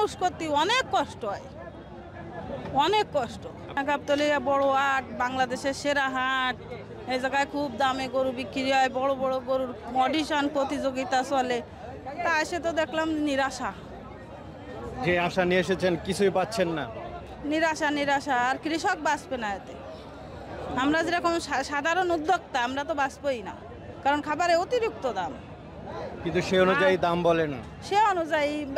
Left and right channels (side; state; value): both; identical; correlation 1.00